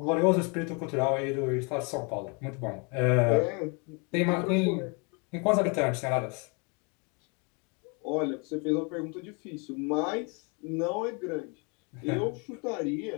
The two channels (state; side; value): quieter; right; 33.5 dB